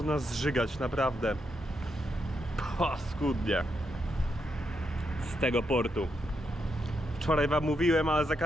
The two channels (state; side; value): normal; both; correlation 0.82